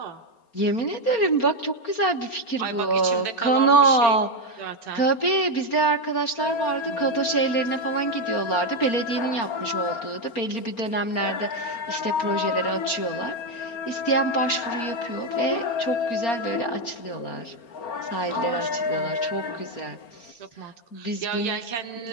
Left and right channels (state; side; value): late; right; 4.3 ms